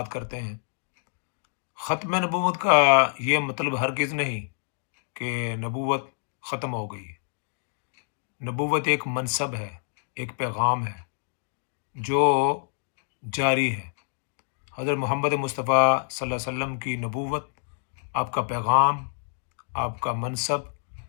کرتے ہیں۔ ختم نبوت کا یہ مطلب ہرگز نہیں کہ نبوت ختم ہو گئی۔ نبوت ایک منصب ہے، ایک پیغام ہے جو جاری ہے۔ حضرت محمد مصطفیٰ صلی اللہ علیہ وسلم کی نبوت، آپ کا پیغام، آپ کا منصب،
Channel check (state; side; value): silent; right; digital silence